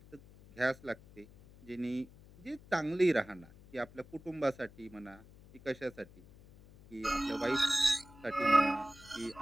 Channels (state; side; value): noise; left; hum, 22 dB below the sound